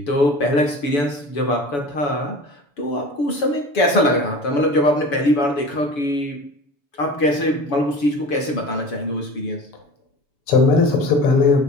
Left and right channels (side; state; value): right; late; 7.0 ms